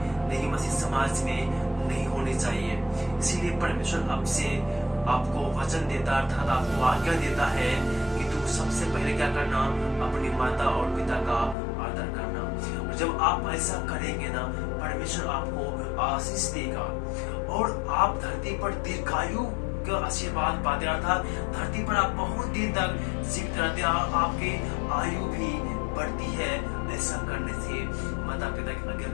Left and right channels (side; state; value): right; drops out; at 11.6 s